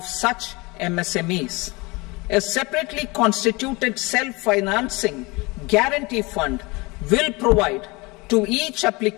such MSMEs. A separately constituted self-financing guarantee fund will provide to each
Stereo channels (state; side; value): quieter; right; 25.3 dB